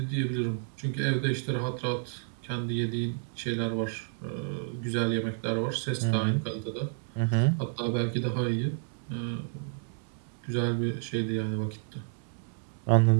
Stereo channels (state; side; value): silent; left; digital silence